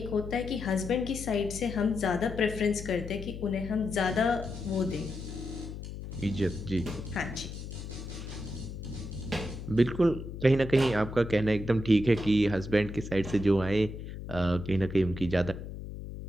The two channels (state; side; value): noise; left; hum, 9 dB below the sound